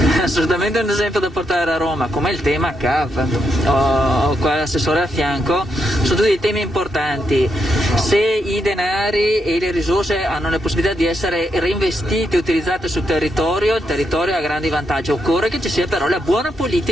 Assolutamente un esempio da portare a Roma, come il tema CAV. Ho qua l'assessore a fianco, sono tutti temi importanti. Se i denari e le risorse hanno la possibilità di essere reinvestiti e utilizzate sul territorio, il territorio ha grandi vantaggi. Occorre che ci sia però la buona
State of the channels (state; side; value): normal; both; correlation 0.81